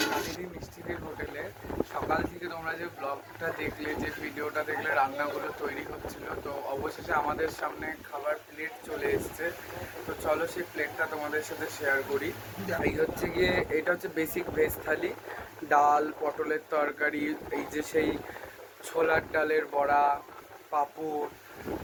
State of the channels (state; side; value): identical; both; correlation 1.00